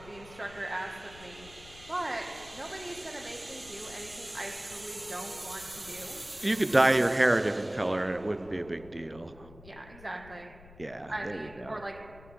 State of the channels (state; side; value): noise; left; rumble, 20 dB below the sound